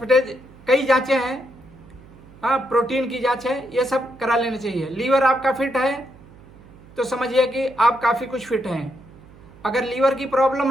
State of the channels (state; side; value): noise; right; hum, 22 dB below the sound